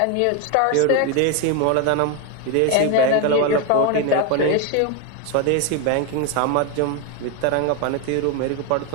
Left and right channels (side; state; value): both; different; correlation 0.01